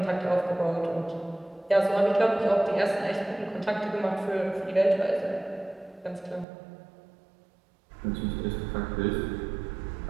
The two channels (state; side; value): drops out; left; at 6.5 s